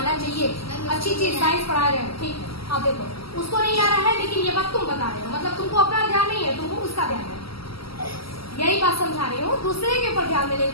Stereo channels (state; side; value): late; right; 0.75 ms